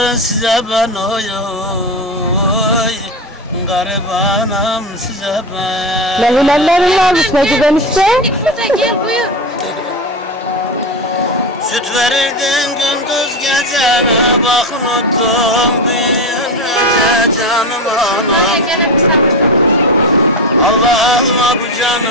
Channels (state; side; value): normal; both; correlation 0.19